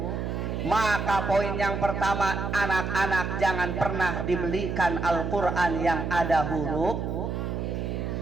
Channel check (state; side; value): noise; right; hum, 3 dB below the sound